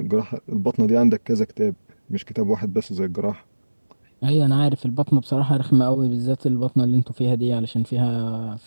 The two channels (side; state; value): both; inverted; correlation -1.00